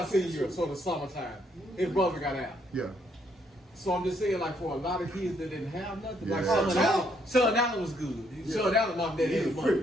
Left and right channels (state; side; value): normal; both; correlation 0.71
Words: senior year, so the summertime. His brother got out. Yeah. So I'm just saying, like, for a lot of kids that didn't have nothing, like Yeah. Sean Allen was good. Sean Allen, mom and dad had